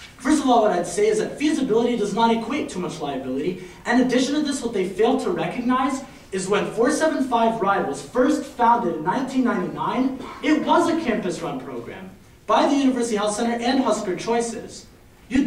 First of all, what I'd say is that feasibility does not equate too much liability. In addition to this, what they fail to recognize is when 475 Ride was first founded in 1999, it was a campus-run program by the University Health Center and Husker Choices. You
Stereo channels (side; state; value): both; identical; correlation 1.00